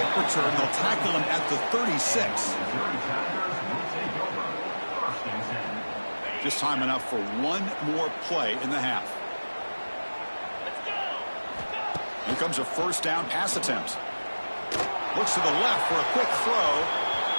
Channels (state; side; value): inverted; both; correlation -1.00